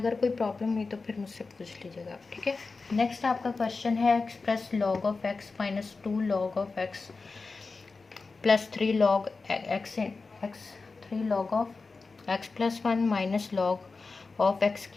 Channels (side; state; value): right; quieter; 4.1 dB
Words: कोई प्रॉब्लम हुई तो फिर मुझसे पूछ लीजिएगा, ठीक है। नेक्स्ट आपका क्वेश्चन है express log of x minus 2 log of x plus 3 log x 3 log of x plus 1 minus log of x